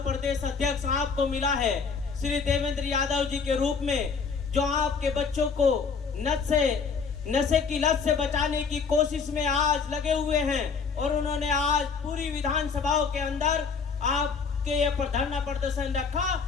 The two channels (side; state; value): right; quieter; 5.5 dB